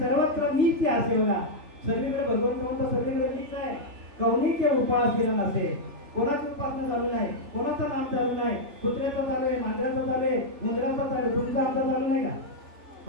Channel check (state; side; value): late; left; 3.6 ms